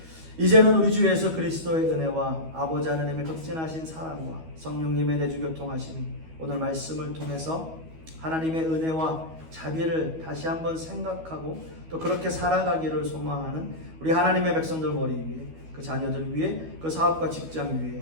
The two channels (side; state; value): left; late; 12 ms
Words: 이제는 우리 주 예수 그리스도의 은혜와 아버지 하나님의 극진하신 사랑과 성령님의 내주 교통하심이 오늘 말씀을 통해서 하나님의 은혜와 자비를 다시 한번 생각하고 또 그렇게 살아가기를 소망하는 우리 하나님의 백성들 머리 위에 그 자녀들 위에 그 사업과 직장